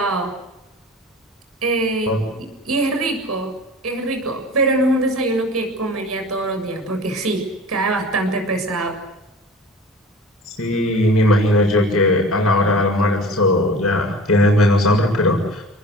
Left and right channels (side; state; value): both; normal; correlation 0.41